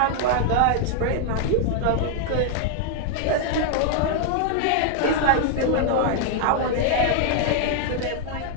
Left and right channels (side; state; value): both; different; correlation 0.00